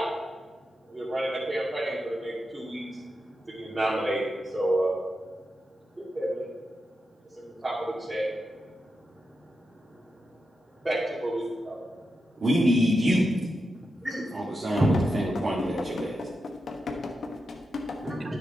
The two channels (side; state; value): both; normal; correlation 0.88